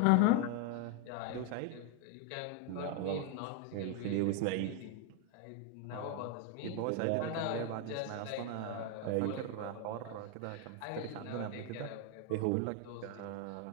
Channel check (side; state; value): both; different; correlation 0.01